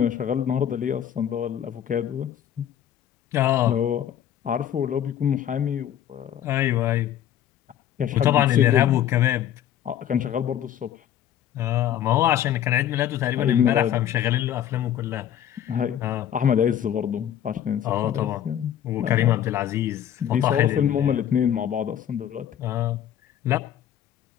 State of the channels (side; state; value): right; quieter; 10.4 dB